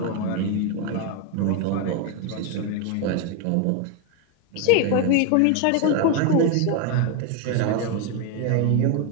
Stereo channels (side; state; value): both; different; correlation 0.02